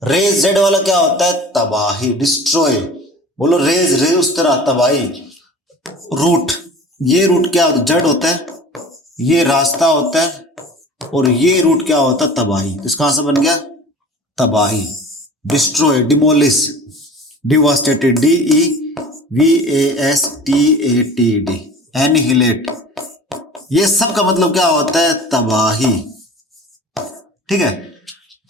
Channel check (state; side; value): normal; both; correlation 0.41